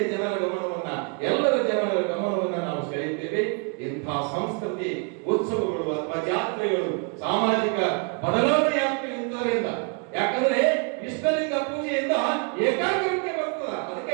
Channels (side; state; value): left; quieter; 38.1 dB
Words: ಜನರ ಗಮನವನ್ನ, ಎಲ್ಲರ ಜನರ ಗಮನವನ್ನ ನಾವು ಸೆಳೆಯುತ್ತೇವೆ. ಇಂಥ ಸಂಸ್ಕೃತಿ ಉತ್ಸವಗಳು ಅಥವಾ ಜಾತ್ರೆಗಳು ಸಾಮಾಜಿಕ ಬದಲಾವಣೆ ಆಗ್ತವೆ ಇಂಥದ್ರಿಂದ. ಯಾಕಂದ್ರೆ ಇಷ್ಟಲಿಂಗ ಪೂಜೆಯಿಂದ ಏಕಾಗ್ರತೆ ಬರ್ತದ.